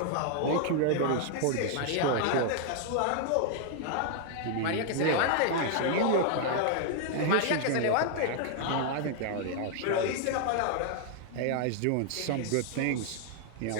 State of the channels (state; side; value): different; both; correlation 0.00